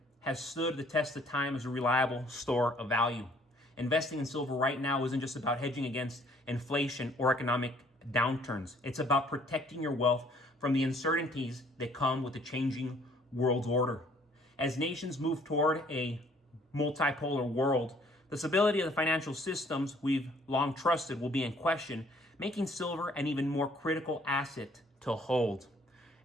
has stood the test of time as a reliable store of value. Investing in silver right now isn't just about hedging against inflation or economic downturns. It's about protecting your wealth from the uncertainties that come with the changing world order. As nations move toward a multipolar world, the stability of the financial systems we've long trusted will be in question, making silver an even more critical asset to hold.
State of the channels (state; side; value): normal; both; correlation 0.60